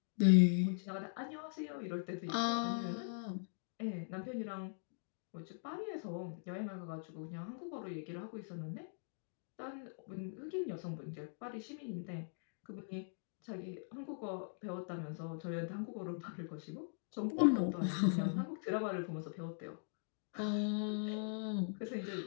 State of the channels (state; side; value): silent; right; digital silence